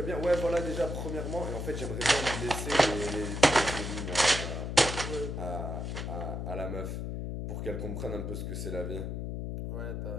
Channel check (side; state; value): left; noise; hum, 4 dB below the sound